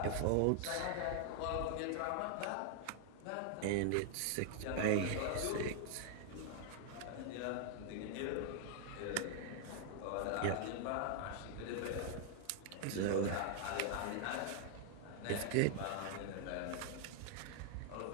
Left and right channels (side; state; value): both; different; correlation 0.00